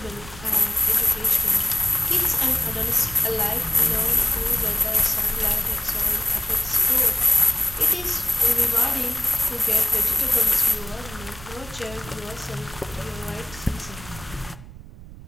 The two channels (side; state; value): right; noise; rumble, 17 dB below the sound